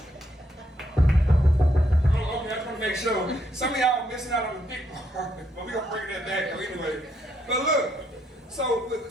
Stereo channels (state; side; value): normal; both; correlation 0.75